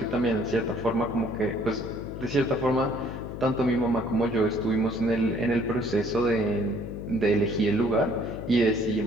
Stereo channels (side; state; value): left; noise; hum, 9 dB below the sound